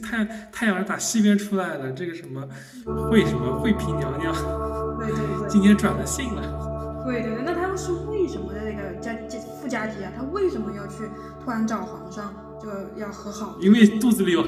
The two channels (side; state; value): both; identical; correlation 1.00